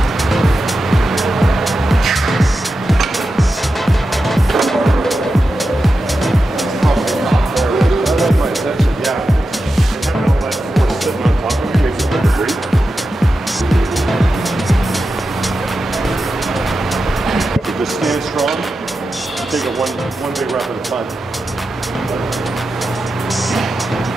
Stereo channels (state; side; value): normal; both; correlation 0.90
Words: Just stand strong. Take it one big rep at a time.